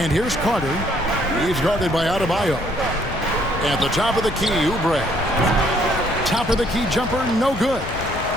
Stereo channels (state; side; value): noise; left; rumble, 10 dB below the sound